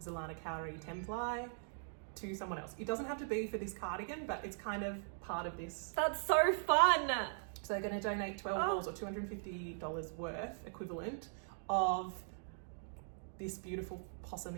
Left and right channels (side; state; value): left; silent; digital silence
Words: Cowrie 10-ply to someone else. It doesn't have to be for this cardigan, but it's kind of part of this. That's so fun. So they're going to donate 12 balls or $250 worth equivalent of this beautiful